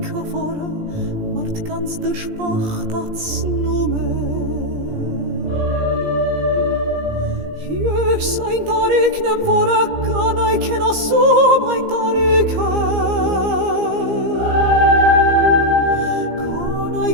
որը մարդկանց դժբախտացնում է Ես այն տարիքն եմ, որը կանայք են ասում այն տարիքը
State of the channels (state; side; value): late; left; 17 ms